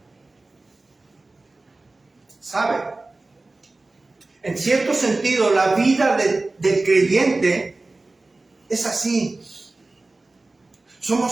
¿Sabe? En cierto sentido, la vida del creyente es así.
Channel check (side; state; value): left; quieter; 3.2 dB